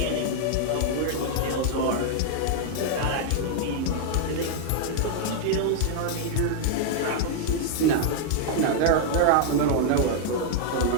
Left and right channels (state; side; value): different; both; correlation 0.00